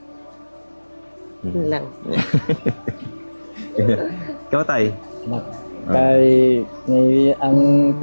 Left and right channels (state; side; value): inverted; both; correlation -1.00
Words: Yun lang. Ikaw, Tay. Kay ang